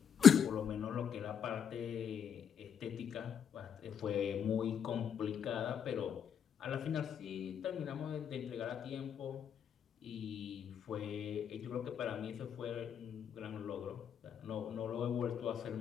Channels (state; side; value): quieter; right; 7.9 dB